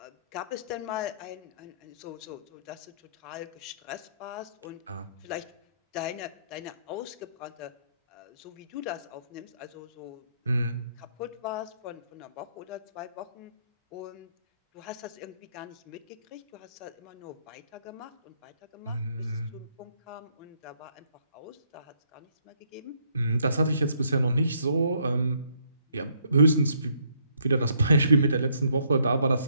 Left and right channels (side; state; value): both; inverted; correlation -0.69